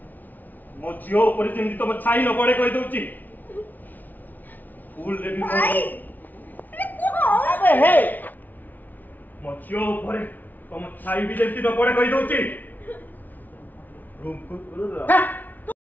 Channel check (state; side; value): late; right; 0.082 ms